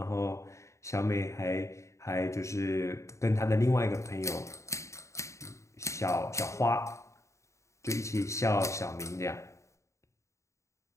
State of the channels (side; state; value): right; late; 0.14 ms